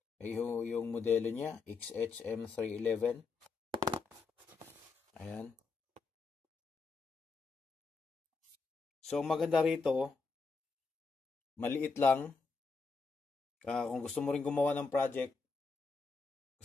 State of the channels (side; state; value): right; quieter; 4.4 dB